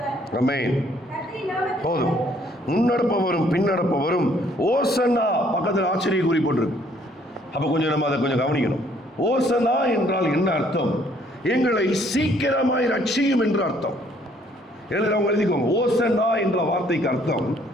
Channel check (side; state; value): both; normal; correlation 0.63